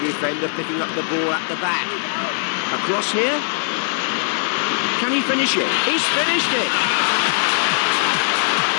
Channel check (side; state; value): right; silent; digital silence